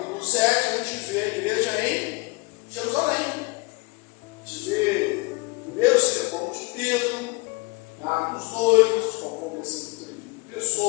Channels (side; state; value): right; quieter; 26.3 dB